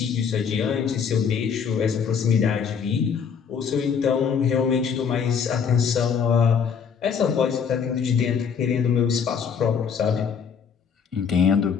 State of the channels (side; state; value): right; quieter; 6.7 dB